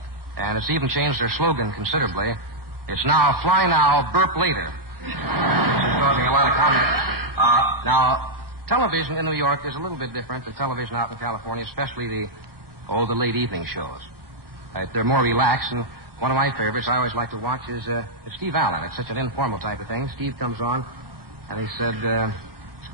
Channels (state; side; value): late; left; 1.1 ms